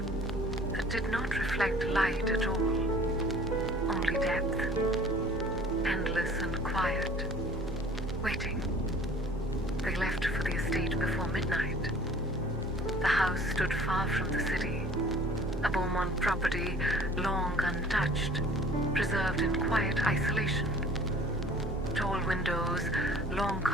that did not reflect light at all, only depth, endless and quiet, waiting. They left for the estate before midnight. The house stood far from the city, a Beaumont property long untouched, preserved in quiet isolation. Tall windows, long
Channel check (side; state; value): both; normal; correlation 0.49